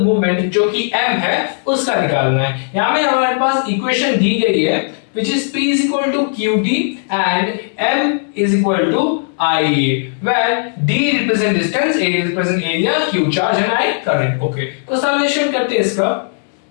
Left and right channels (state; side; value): silent; right; digital silence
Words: मूवमेंट जो कि M है उसका निकालना है। यहां में हमारे पास इक्वेशन दी गई है which is P is equal to QD and M is equal to IA, where D represent distance, A represent area, Q charge and I current। Okay तो सॉल्यूशन करते हैं इसका।